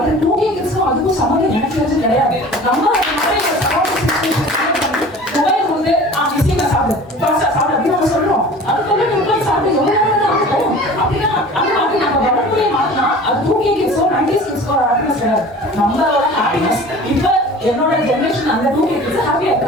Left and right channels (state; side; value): normal; both; correlation 0.42